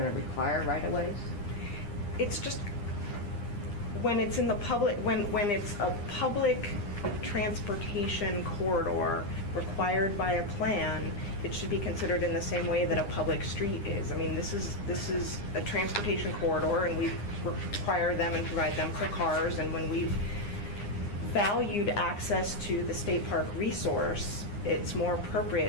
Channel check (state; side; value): late; right; 9.8 ms